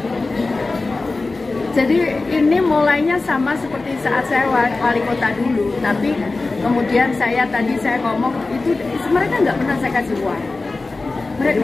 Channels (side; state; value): right; quieter; 3.5 dB